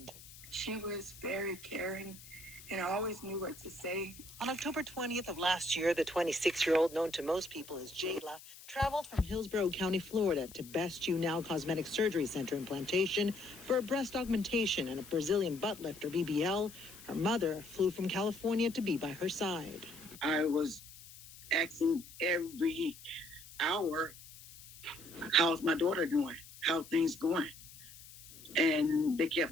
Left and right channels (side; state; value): left; noise; hiss, 18 dB below the sound